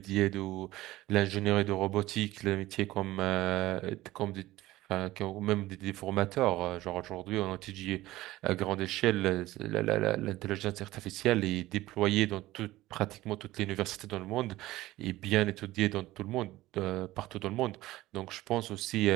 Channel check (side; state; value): left; quieter; 17.1 dB